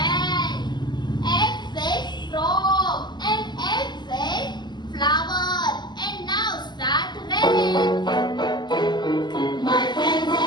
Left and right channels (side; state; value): right; late; 0.21 ms